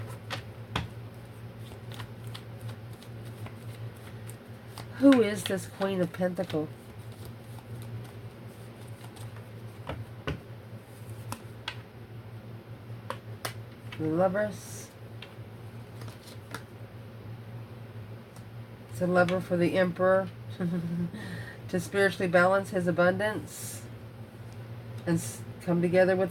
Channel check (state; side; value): identical; both; correlation 1.00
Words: Who is this Queen of Pentacles? The Lovers. It's a lover for the Emperor to spiritually balance his abundance and come together